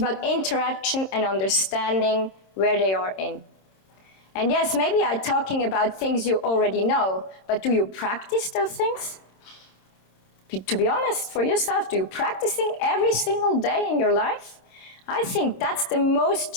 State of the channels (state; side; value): late; right; 26 ms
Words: interaction and understanding where they are in. And yes, maybe I'm talking about things you already know, but do you practice those things? To be honest, for yourself, do you practicing every single day in your life? I think that's the most